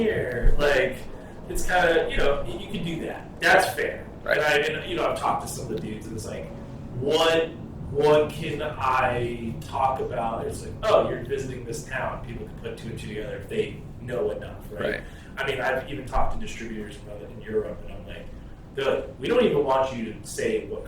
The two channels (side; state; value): both; identical; correlation 1.00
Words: Like, it's kind of, you can do that. That's fair. Right. And I've talked to some of the dudes, and it's like, what can I talk about? It's like, oh, you're visiting this town. People can put two and two together if they know enough, right? I mean, I've even talked to distributors in Europe, and I'm like, they're like, we don't even want you to say what